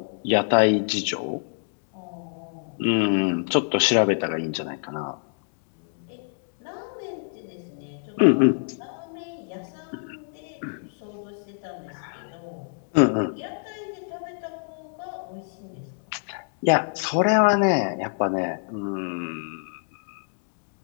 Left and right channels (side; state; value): right; silent; digital silence